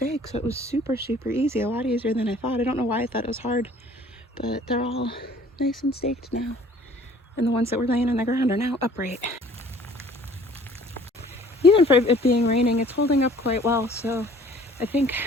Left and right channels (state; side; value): normal; both; correlation 0.53